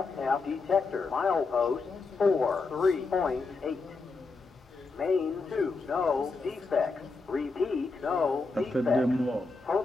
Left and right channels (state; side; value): quieter; right; 4.0 dB